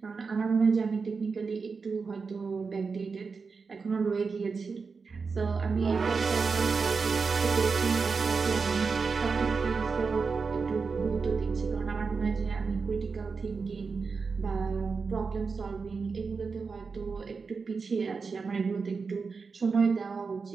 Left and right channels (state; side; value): quieter; left; 4.9 dB